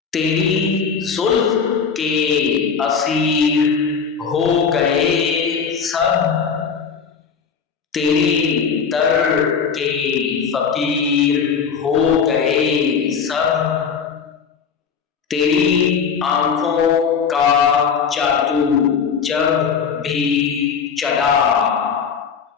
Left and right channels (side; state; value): right; quieter; 6.3 dB